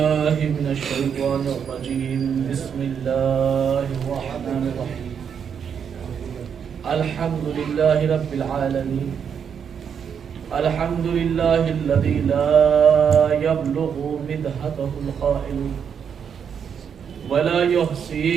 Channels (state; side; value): quieter; left; 7.4 dB